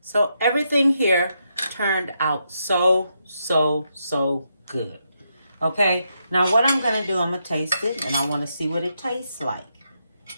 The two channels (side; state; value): both; inverted; correlation -0.81